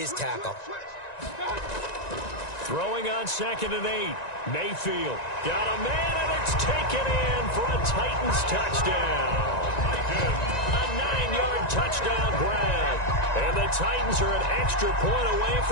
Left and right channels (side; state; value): right; late; 1.9 ms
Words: tackle. Throwing on 2nd and 8. Mayfield got a man, and it's taken in for a Titans touchdown. A 9-yard touchdown grab. And the Titans are an extra point away